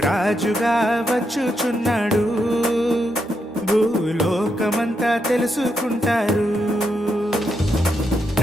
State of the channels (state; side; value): normal; both; correlation 0.82